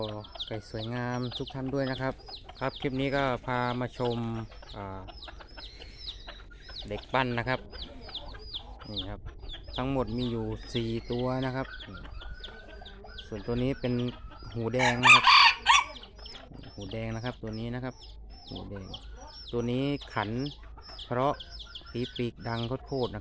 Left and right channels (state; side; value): identical; both; correlation 1.00